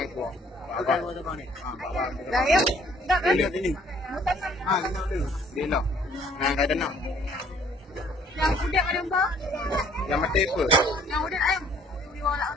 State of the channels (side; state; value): both; normal; correlation 0.59